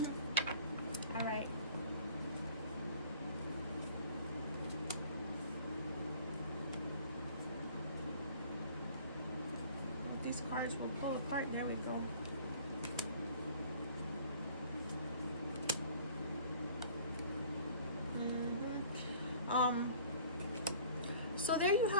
All right. These cards will pull apart. There we go. So there you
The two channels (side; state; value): both; inverted; correlation -0.50